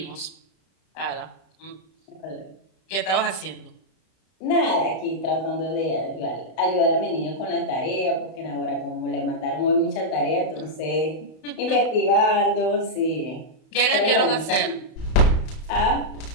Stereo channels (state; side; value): late; right; 32 ms